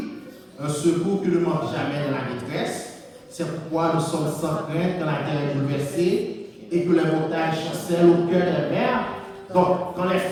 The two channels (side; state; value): both; identical; correlation 1.00